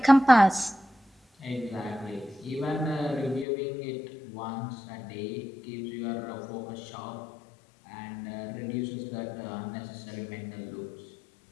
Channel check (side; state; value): right; drops out; at 3.5 s